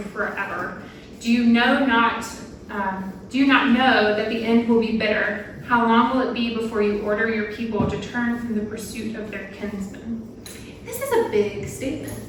forever? Do you not know that the end will be bitter? How long will it be before you order your people to turn from the pursuit of their kinsmen?" This is a big statement.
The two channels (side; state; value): both; identical; correlation 1.00